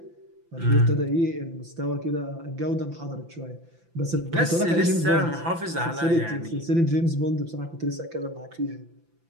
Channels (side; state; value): left; late; 5.9 ms